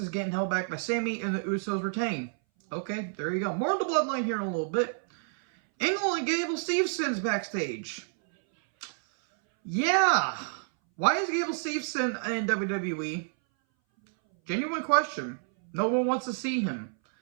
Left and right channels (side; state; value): left; silent; 59 dB below the other